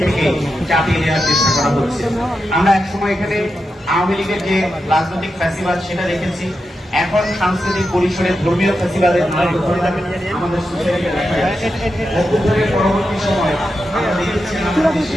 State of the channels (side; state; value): both; normal; correlation 0.88